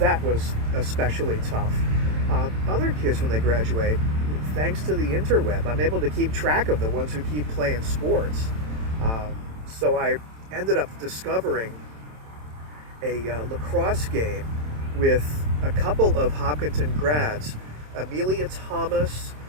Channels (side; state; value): left; late; 27 ms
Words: was especially tough. Other kids, when they graduate, thanks to the interweb, I'm able to keep track of the ones who keep playing sports. So I ended up discovering a lacrosse game with a couple of Hopkinton grads, Amelia Thomas